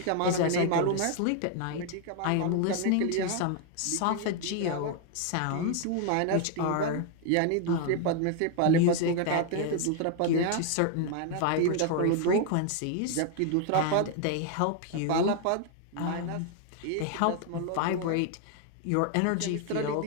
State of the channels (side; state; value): both; different; correlation 0.00